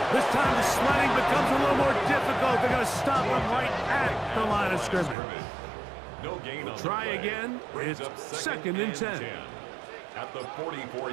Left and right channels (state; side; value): drops out; left; at 5.2 s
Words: This time the sledding becomes a little more difficult. They're going to stop him right at the line of scrimmage. No gain on Try again. It's 2nd and 10. At the